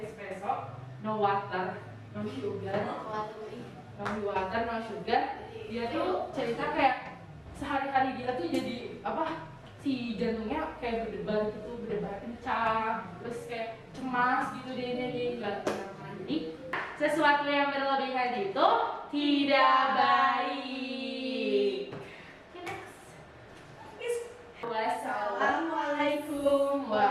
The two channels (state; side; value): identical; both; correlation 1.00